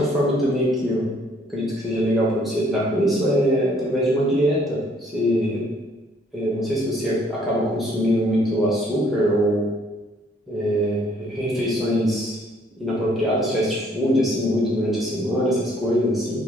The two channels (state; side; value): normal; both; correlation 0.63